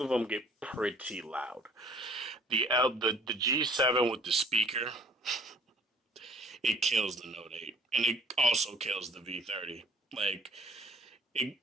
of them get pretty loud. The G7 with the speaker, it kills the Note 8, and it also kills the V30. Like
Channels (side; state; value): both; normal; correlation 0.54